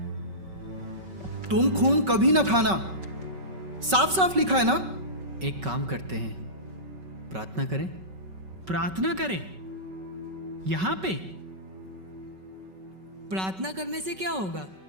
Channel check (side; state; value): left; late; 5.3 ms